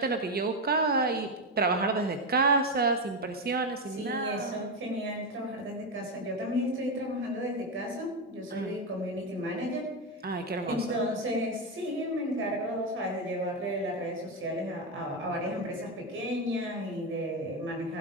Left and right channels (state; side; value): normal; both; correlation 0.10